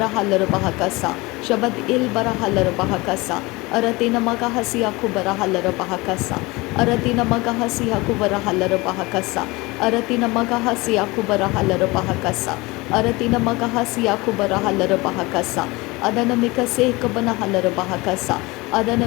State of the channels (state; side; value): quieter; right; 23.1 dB